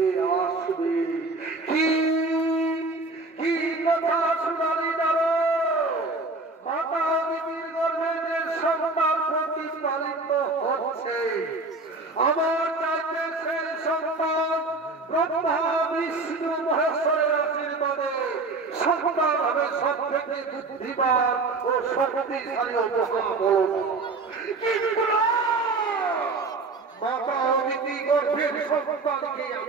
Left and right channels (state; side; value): quieter; left; 3.5 dB